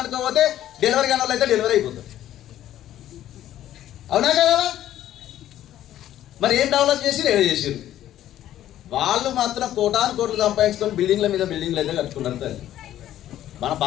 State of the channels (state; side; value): quieter; right; 12.5 dB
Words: పోతే డెలివరీ కాని వాళ్ళు అయితే డెలివరీ అయిపోతుంది, అవునా కదా? మరి ఏం డెవలప్ చేసి ఏదో చేసారు. వాళ్ళు మాత్రం కోటాను కోట్లు సంపాదించుకొని బిల్డింగ్ల మీద బిల్డింగ్లు అయితే కట్టుకున్నారు తల్లి. మన